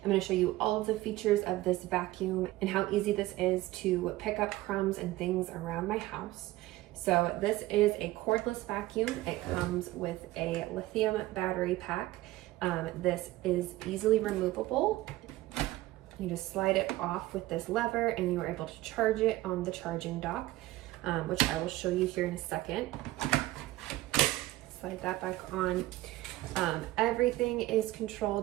I'm going to show you all of the features of this vacuum and how easy this is to pick up crumbs and things around my house. So this is a cordless vacuum. It comes with a lithium battery pack. This is easily removable. You just slide it off with this lever and you are able to charge it on the charging dock, which I will show you here in a second. Slide that back on. Everything is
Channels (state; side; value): quieter; left; 17.1 dB